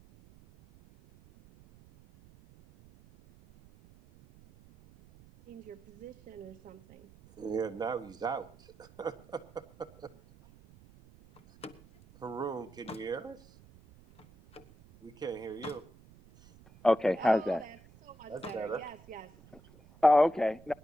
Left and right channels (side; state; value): right; noise; rumble, 24 dB below the sound